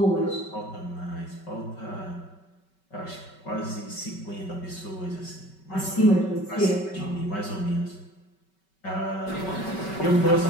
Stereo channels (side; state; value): right; late; 5.3 ms